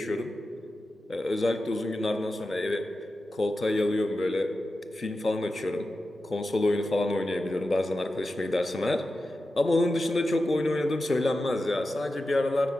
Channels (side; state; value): both; normal; correlation 0.92